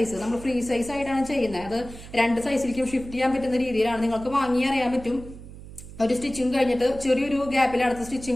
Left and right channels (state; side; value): noise; right; hum, 15 dB below the sound